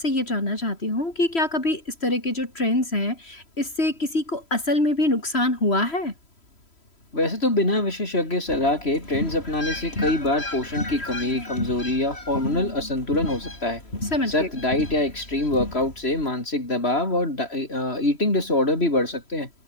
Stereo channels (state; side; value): late; right; 3.1 ms